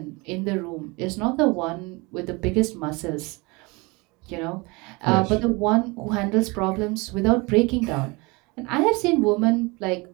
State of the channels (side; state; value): left; quieter; 26.2 dB